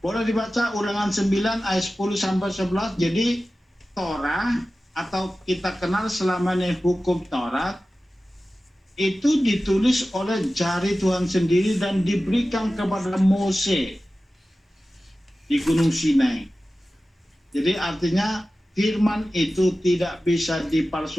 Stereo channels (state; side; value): normal; both; correlation 0.95